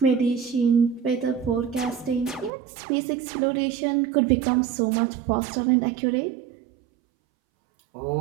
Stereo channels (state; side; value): drops out; left; at 2.5 s